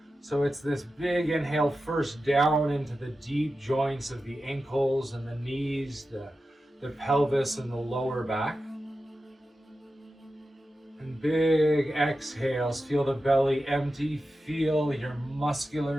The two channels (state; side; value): normal; both; correlation 0.92